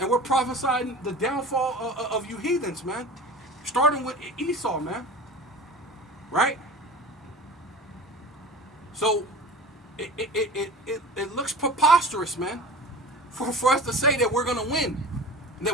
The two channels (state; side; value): normal; both; correlation 0.37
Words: we're prophesying the downfall of you heathens, man. Starting with Esau, man. Right? So it looks preposterous, man, for us to say that we're going to win and